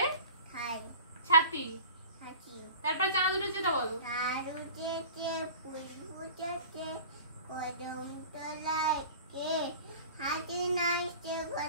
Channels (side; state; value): both; inverted; correlation -0.41